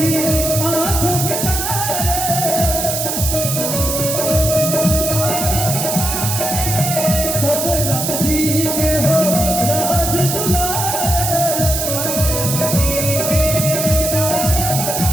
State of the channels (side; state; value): right; noise; hiss, 2 dB below the sound